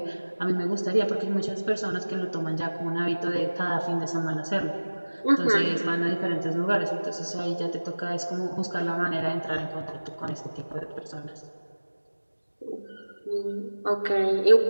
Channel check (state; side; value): inverted; both; correlation -1.00